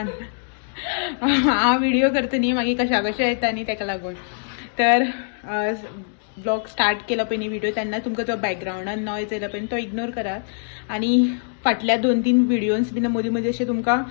हांव व्हिडिओ करता न्ही मागीर कशा कशें येता न्ही ताका लागून. तर ब्लॉग स्टार्ट केला पळय न्ही व्हिडिओ तेन्ना तुमकां जो बॅकग्रावंडान नॉयज येयला पळय तो इग्नोर करात. आणि फाटल्या 2-3 व्हिडिओज बीन मदीं मदीं अशें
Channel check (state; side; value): silent; right; digital silence